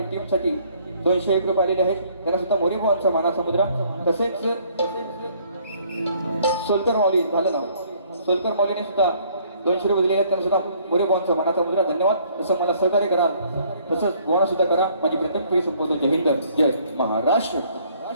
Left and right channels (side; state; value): both; inverted; correlation -0.61